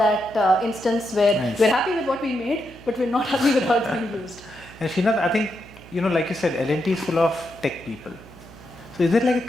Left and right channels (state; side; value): noise; right; hum, 20 dB below the sound